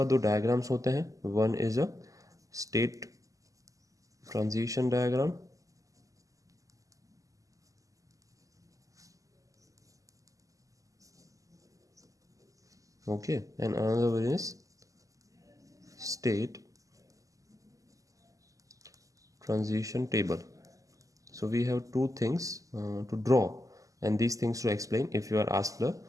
दो डायग्राम्स होते हैं. One is a state transition diagram, okay, and another one is state transition table. So we have two things to draw and these things to explain if you are asked the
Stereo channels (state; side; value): late; left; 0.16 ms